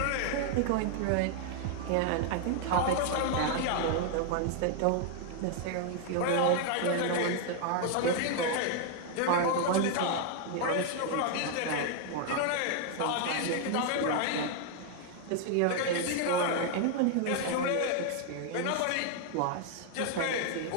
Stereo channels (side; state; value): both; different; correlation 0.00